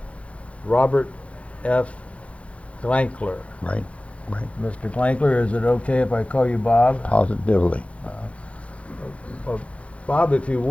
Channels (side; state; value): right; late; 0.063 ms